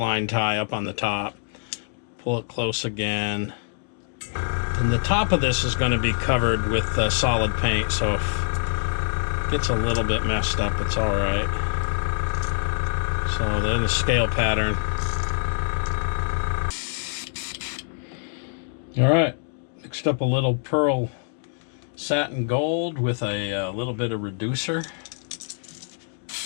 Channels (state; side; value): silent; right; digital silence